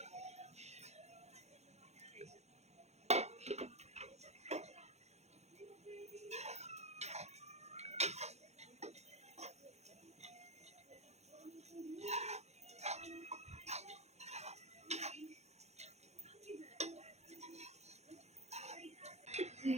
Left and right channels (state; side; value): late; left; 0.32 ms